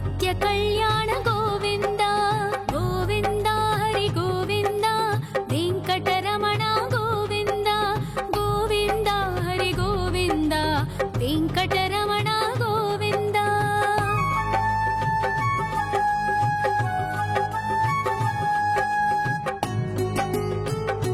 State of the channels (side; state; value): both; identical; correlation 1.00